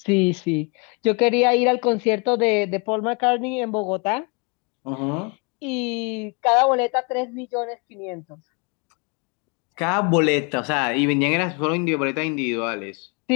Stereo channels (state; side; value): quieter; right; 31.8 dB